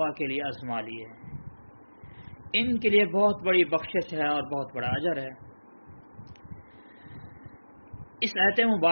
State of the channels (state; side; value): inverted; both; correlation -1.00